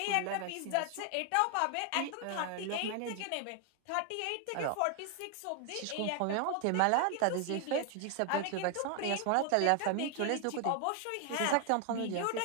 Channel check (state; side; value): different; both; correlation 0.00